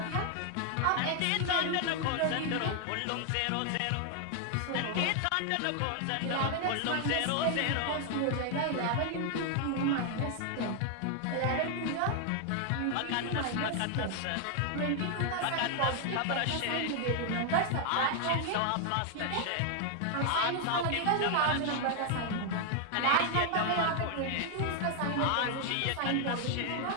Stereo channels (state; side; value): different; both; correlation 0.00